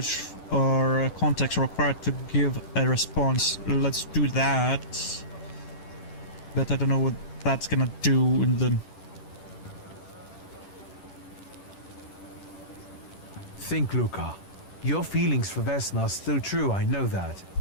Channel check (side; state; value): right; late; 10 ms